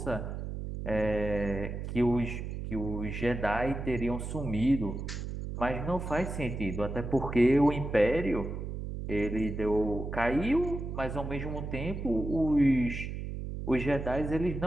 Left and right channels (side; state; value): right; noise; hum, 6 dB below the sound